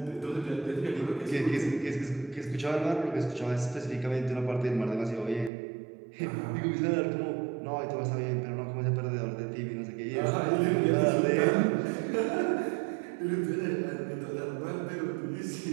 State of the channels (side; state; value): left; drops out; at 5.5 s